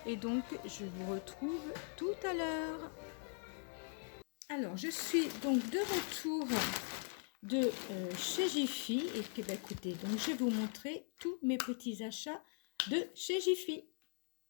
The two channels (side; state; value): right; silent; 50 dB below the other